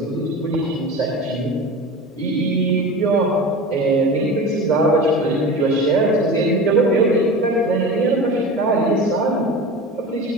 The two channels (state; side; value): normal; both; correlation 0.31